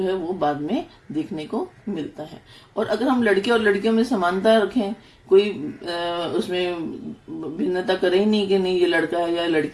है वो बाद में देखने को मिलता है। और अगर हम लड़के और लड़कियों में समानता रखें, कोई उसमें भिन्नता करे ही नहीं कि नहीं ये लड़का है या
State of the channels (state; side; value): identical; both; correlation 1.00